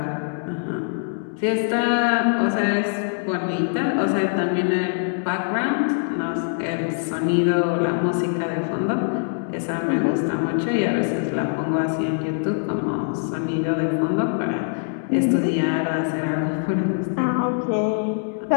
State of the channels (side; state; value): right; silent; digital silence